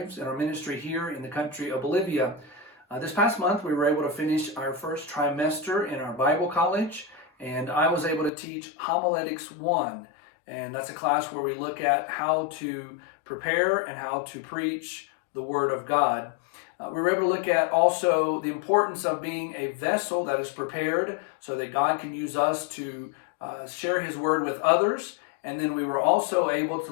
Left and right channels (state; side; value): drops out; right; at 8.3 s